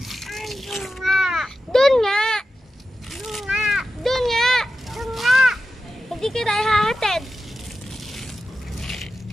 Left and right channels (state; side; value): normal; both; correlation 0.92